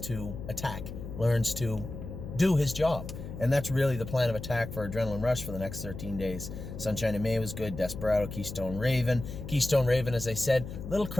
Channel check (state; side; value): noise; left; hum, 9 dB below the sound